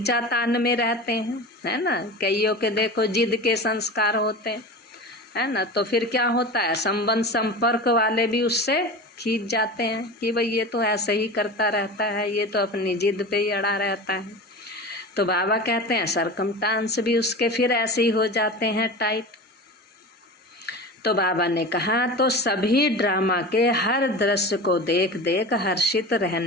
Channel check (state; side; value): normal; both; correlation 0.31